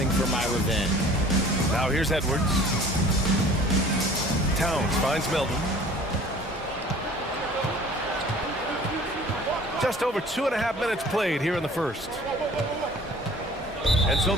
for my revenge. Now here's Edwards. Towns finds Milton. Just over 2.5 minutes played here in the first. And so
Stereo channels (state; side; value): normal; both; correlation 0.48